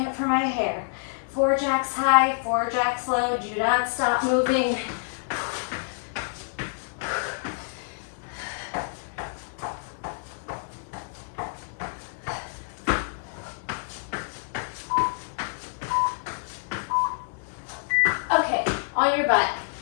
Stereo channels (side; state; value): right; silent; digital silence